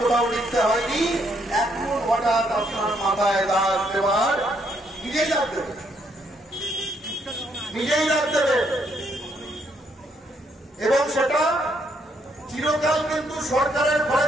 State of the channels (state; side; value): normal; both; correlation 0.72